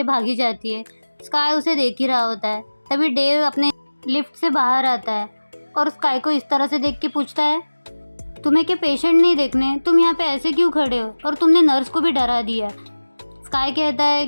भागी जाती है। स्काई उसे देख ही रहा होता है। तभी डेव अपने लिफ्ट से बाहर आता है और स्काई को इस तरह से देख के पूछता है, तुम्हें क्या पेशेंट नहीं देखने, तुम यहाँ पे ऐसे क्यों खड़े हो, और तुमने नर्स को भी डरा दिया। स्काई कहता है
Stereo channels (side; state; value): both; inverted; correlation -1.00